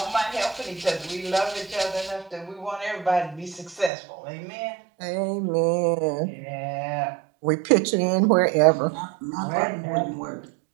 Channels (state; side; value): drops out; left; at 3.9 s